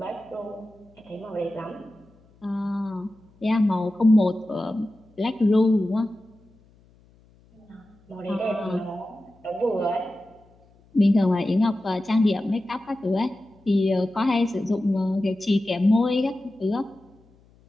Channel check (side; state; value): left; noise; hum, 30 dB below the sound